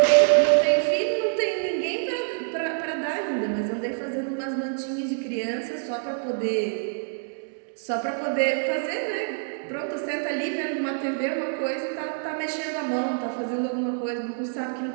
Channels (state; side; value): silent; left; digital silence